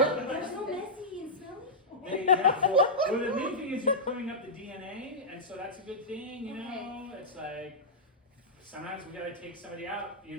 so messy and smelly. Well, the main thing is you're clearing up the DNA, and so that's a good thing, you know? It's like, sometimes we gotta take somebody out, you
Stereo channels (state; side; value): normal; both; correlation -0.11